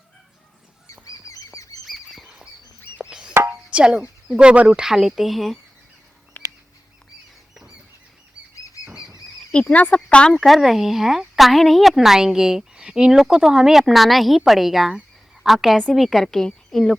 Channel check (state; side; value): normal; both; correlation 0.97